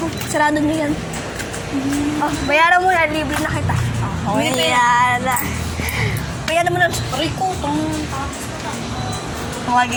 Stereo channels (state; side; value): identical; both; correlation 1.00